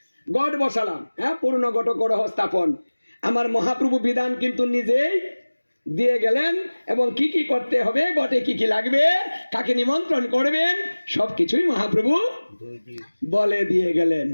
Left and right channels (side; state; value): both; inverted; correlation -1.00